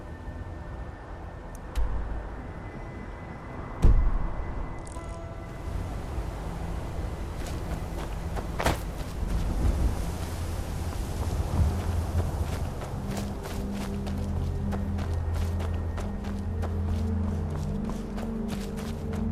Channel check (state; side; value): identical; both; correlation 1.00